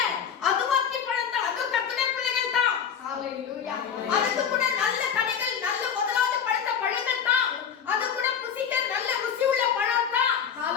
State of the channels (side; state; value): right; quieter; 7.6 dB